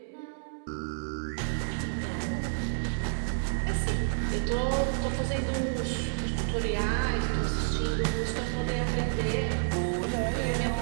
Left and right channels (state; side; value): silent; left; 58 dB below the other